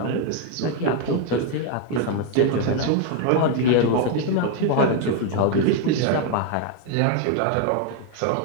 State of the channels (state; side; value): different; both; correlation 0.01